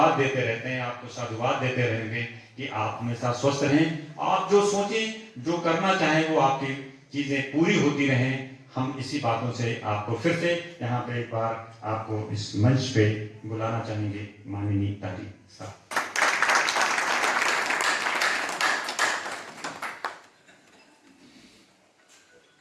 देते रहते हैं, आपको साधुवाद देते रहेंगे कि आप हमेशा स्वस्थ रहें। आप जो सोचें, जो करना चाहें, वो आपकी चीजें पूरी होती रहें। हम इसी बातों से आपको फिर से यहाँ पे एक बार आपको इस मंच पे बुलाना चाहेंगे, माननीय तारिक साहब।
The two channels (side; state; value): both; identical; correlation 1.00